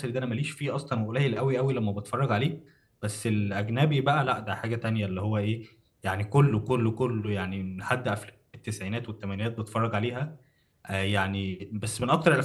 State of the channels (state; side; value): identical; both; correlation 1.00